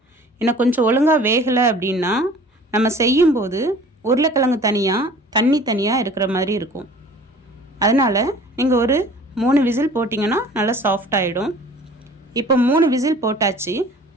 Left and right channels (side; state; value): both; normal; correlation 0.47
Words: ஏன்னா கொஞ்சம் ஒழுங்காக வேகலை அப்படின்னா நம்ம செய்யும்போது உருளைக்கிழங்கு தனியாக தண்ணி தனியாக இருக்கிற மாதிரி இருக்கும். அதனால் நீங்கள் ஒரு 3 விசில் போட்டிங்கன்னா நல்லா சாஃப்டாகிடும். இப்போ 3 விசில் போட்டாச்சு.